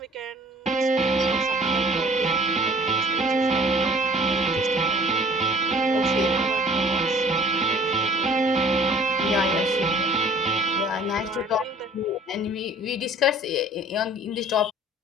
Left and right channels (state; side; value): normal; both; correlation 0.51